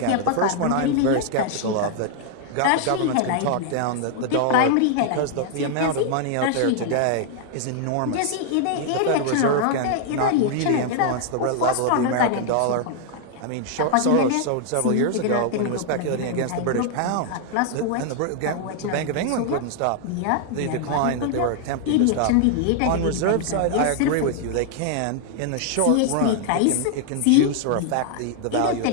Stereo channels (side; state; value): both; different; correlation 0.00